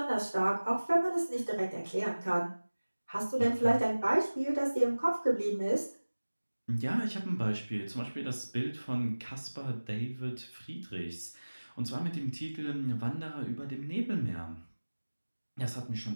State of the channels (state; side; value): inverted; both; correlation -1.00